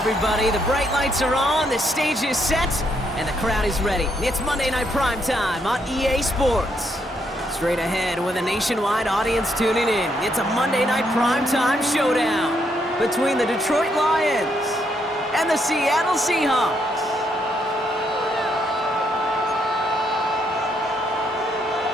The bright lights are on, the stage is set, and the crowd is ready. It's Monday Night Primetime on EA Sports. Straight ahead with a nationwide audience tuning in, it's a Monday Night Primetime showdown between the Detroit Lions and the Seattle Seahawks.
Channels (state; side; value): normal; both; correlation 0.75